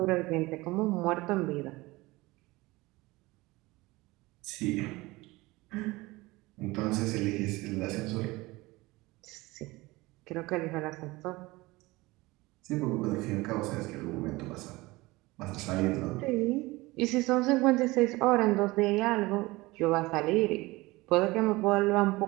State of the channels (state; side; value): quieter; left; 21.1 dB